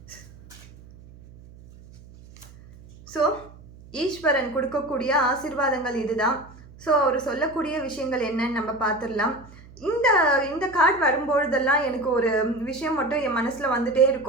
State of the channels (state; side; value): noise; right; hum, 21 dB below the sound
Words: ஸோ ஈஸ்வரன் கொடுக்கக்கூடிய ஆசீர்வாதங்கள் இதுதான். ஸோ அவர் சொல்லக்கூடிய விஷயங்கள் என்னன்னு நம்ம பார்த்துடலாம். இந்த கார்டு வரும்பொழுதெல்லாம் எனக்கு ஒரு விஷயம் மட்டும் என் மனசில் வந்துட்டே